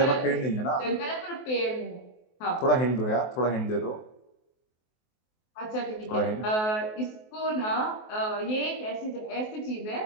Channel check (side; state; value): right; late; 23 ms